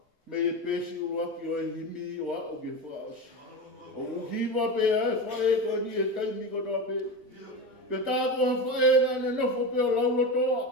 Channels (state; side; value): normal; both; correlation 0.22